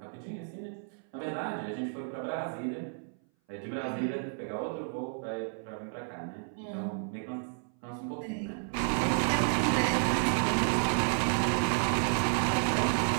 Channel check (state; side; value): silent; left; 57 dB below the other